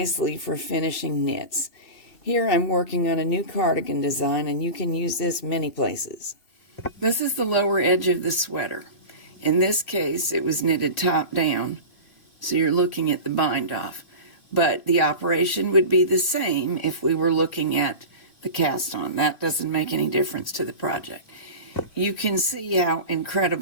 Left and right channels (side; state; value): right; late; 2.5 ms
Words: for finishing knits. Here I'm working on a new cardigan design, and you can use this many places. This is the lower edge of the sweater. In this case, it was knitted top down, so you're looking at the bind off. But the operation would be the same if we were looking at the cast on. That doesn't make any difference to the project. You can see how